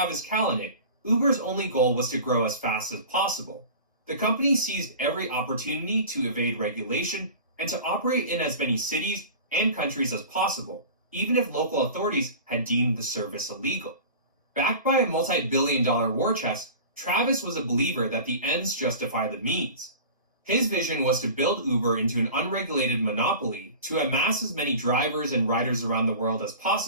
Kalanick, Uber's only goal was to grow as fast as possible. The company seized every opportunity to evade regulation and to operate in as many cities and countries as possible, even if local authorities had deemed the service illegal. Backed by a multi-billion-dollar war chest, Travis was a believer that the ends justify the means. His vision was to build Uber into an unregulated monopoly to amass as many drivers and riders around the world as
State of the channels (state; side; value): inverted; both; correlation -0.37